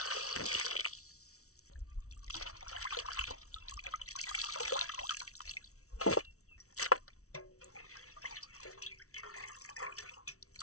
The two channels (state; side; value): late; right; 0.64 ms